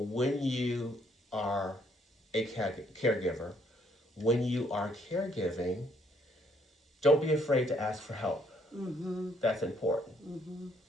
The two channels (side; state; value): both; normal; correlation 0.68